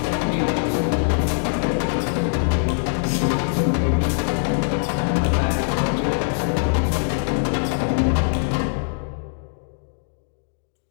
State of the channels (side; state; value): right; silent; digital silence